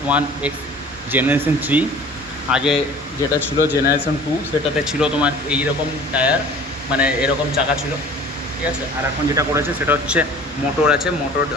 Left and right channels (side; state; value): both; normal; correlation 0.46